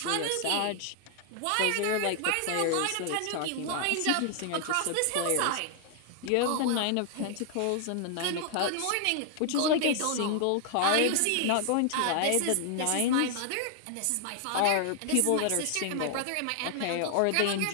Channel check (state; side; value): different; both; correlation 0.00